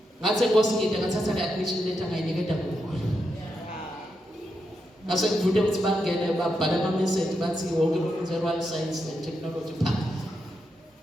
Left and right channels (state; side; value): normal; both; correlation 0.84